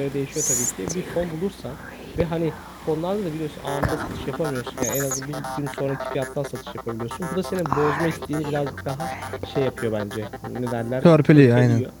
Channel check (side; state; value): both; identical; correlation 1.00